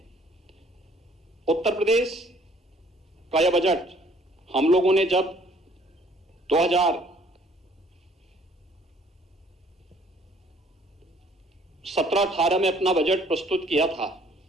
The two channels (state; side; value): normal; both; correlation 0.59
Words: उत्तर प्रदेश का यह बजट हम लोगों ने जब 2017-18 में अपना बजट प्रस्तुत किया था,